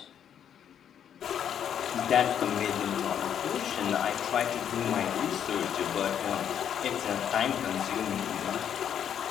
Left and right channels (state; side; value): quieter; right; 9.0 dB